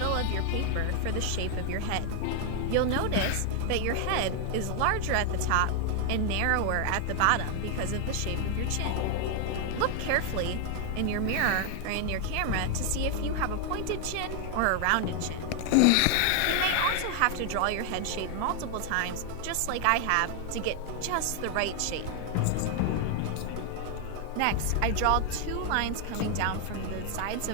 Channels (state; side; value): different; both; correlation 0.00